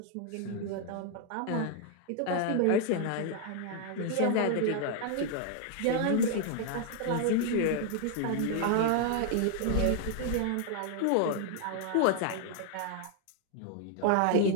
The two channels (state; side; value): different; both; correlation 0.00